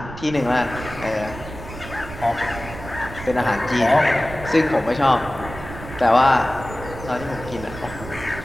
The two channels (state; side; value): noise; right; rumble, 12 dB below the sound